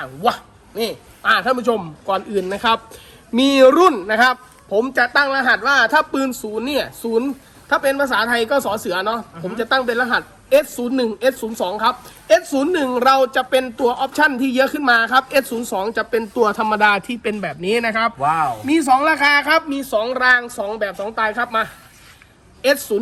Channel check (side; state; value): both; identical; correlation 1.00